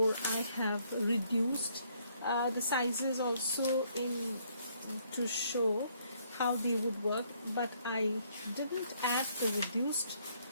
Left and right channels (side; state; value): both; inverted; correlation -0.68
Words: I have reduced the sizes also to show how they would work, but I didn't add the reduced